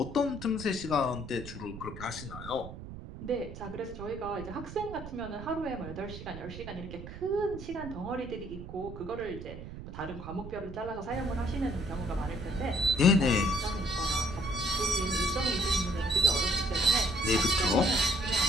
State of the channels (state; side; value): noise; right; rumble, 12 dB below the sound